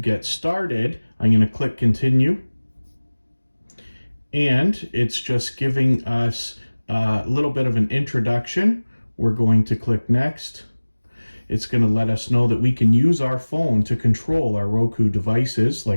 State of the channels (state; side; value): inverted; both; correlation -1.00